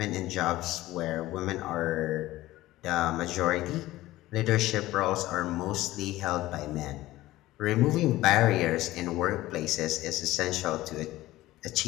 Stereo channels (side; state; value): right; quieter; 16.8 dB